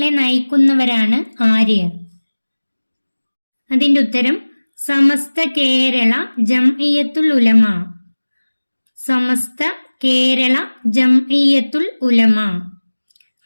നയിക്കുന്നവരാണ് ആര്? അതിന്റെ ഉത്തരം സമസ്ത കേരള ജംഇയ്യത്തുൽ ഉലമ. സമസ്ത കേരള ജംഇയ്യത്തുൽ ഉലമ.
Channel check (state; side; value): inverted; both; correlation -1.00